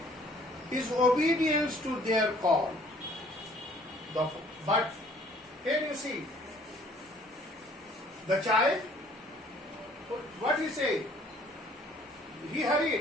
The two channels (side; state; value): both; normal; correlation 0.57